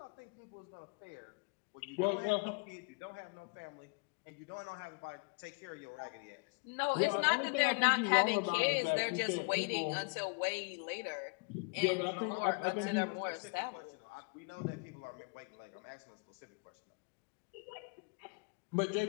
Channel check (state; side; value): quieter; right; 35.6 dB